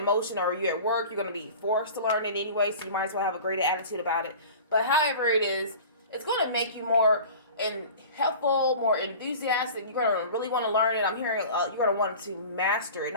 emotion, or you're at work, you're going to be forced to learn it anyway, so you might as well have a great attitude about it. But however it is, it's going to make you more helpful, more enthusiastic. You're going to really want to learn it. I'm hearing you're going to want to master it,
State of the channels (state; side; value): inverted; both; correlation -0.39